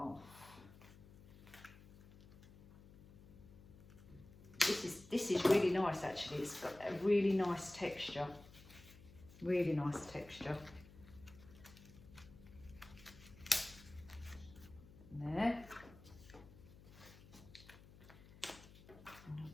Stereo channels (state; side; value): noise; left; hum, 20 dB below the sound